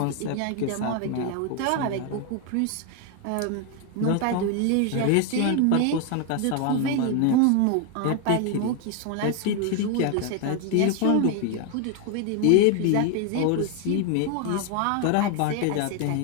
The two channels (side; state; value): both; different; correlation 0.01